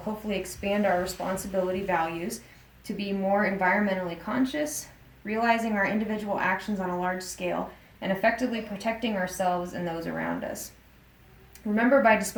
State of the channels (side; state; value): both; identical; correlation 1.00